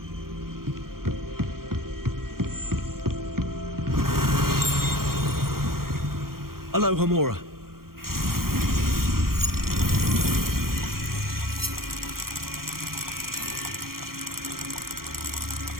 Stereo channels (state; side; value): late; left; 0.92 ms